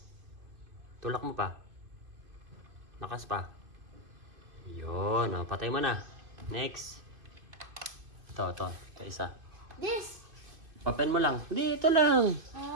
Tulak mo pa. Lakas pa. Yun, patay mo na. Next. Ito, isa. This. Open mo lang. Dito lang.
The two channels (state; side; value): late; left; 2.4 ms